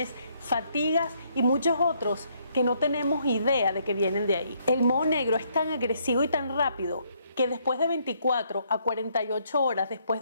fatigas y muchos otros que no tenemos idea de que vienen de ahí. El moho negro es tan agresivo y tan rápido que después de 24 a 48 horas después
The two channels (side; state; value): both; inverted; correlation -0.70